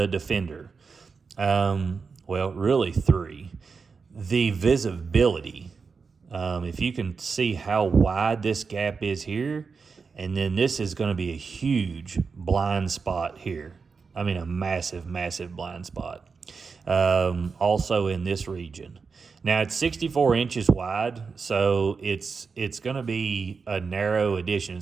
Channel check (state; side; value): quieter; left; 5.1 dB